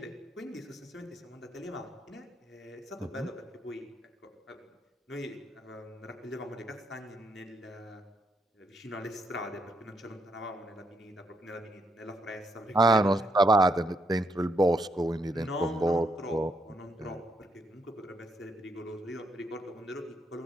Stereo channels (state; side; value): normal; both; correlation 0.76